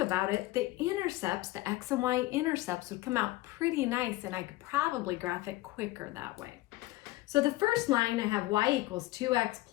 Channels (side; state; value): right; quieter; 18.3 dB